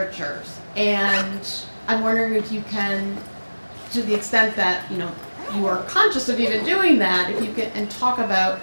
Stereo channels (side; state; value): both; inverted; correlation -1.00